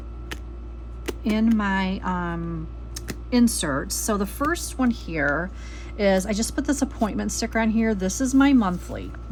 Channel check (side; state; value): both; identical; correlation 1.00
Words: my inserts. So the first one here is, I just put this appointment sticker on here. This is my monthly.